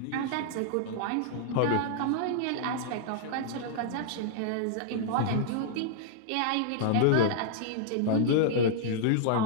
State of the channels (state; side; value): different; both; correlation -0.01